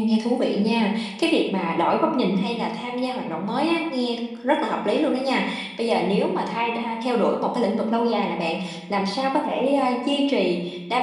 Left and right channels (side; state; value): both; identical; correlation 1.00